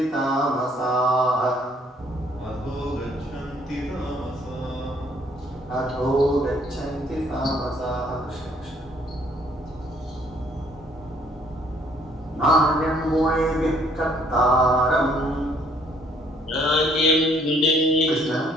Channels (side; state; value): both; normal; correlation 0.63